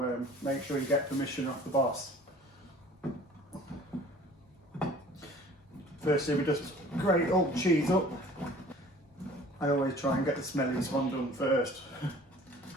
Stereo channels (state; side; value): normal; both; correlation 0.49